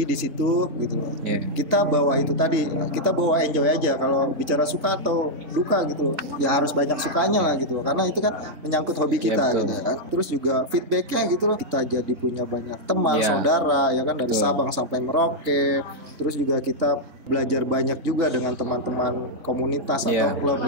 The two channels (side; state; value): left; late; 3.4 ms